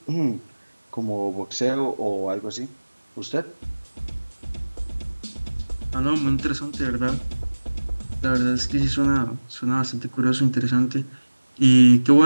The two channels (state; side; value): inverted; both; correlation -1.00